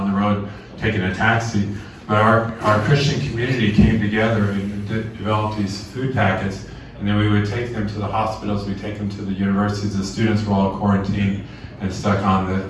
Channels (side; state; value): both; identical; correlation 1.00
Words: the road taking a taxi. But our Christian community came together and developed these food packets. And then we would take them to the hospitals, we'd take them to the universities. The students were all quarantined and stuck on